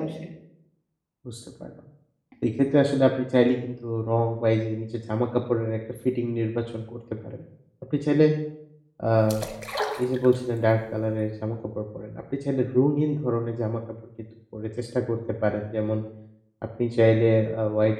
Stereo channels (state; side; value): identical; both; correlation 1.00